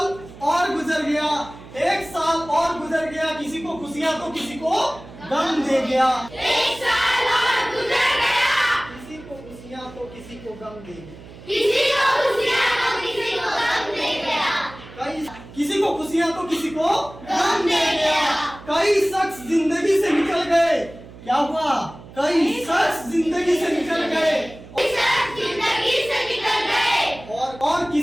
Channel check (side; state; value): right; noise; hum, 18 dB below the sound